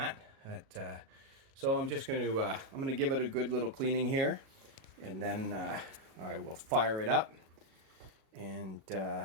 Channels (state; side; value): late; left; 37 ms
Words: So I'm just I'm gonna give it a good little cleaning here, and then I will fire it up, and